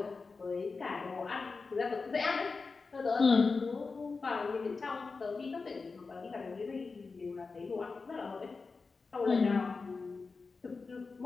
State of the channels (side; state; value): right; quieter; 4.4 dB